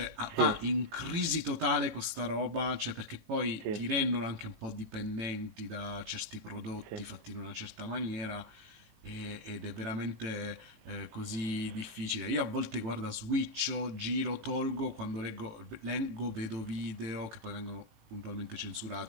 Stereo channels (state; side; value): late; left; 18 ms